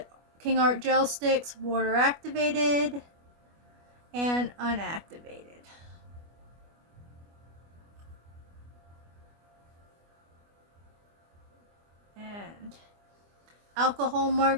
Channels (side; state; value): left; late; 25 ms